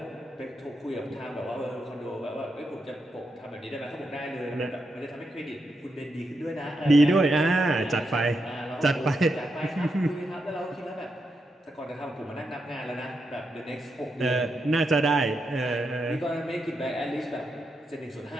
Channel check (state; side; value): normal; both; correlation 0.84